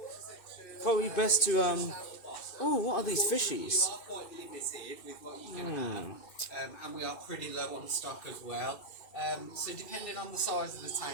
probably best to oh, what are these fishies? We are quite limited with what you can have, and we are pretty low on stock as well. So depending on the size of the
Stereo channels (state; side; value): late; right; 2.3 ms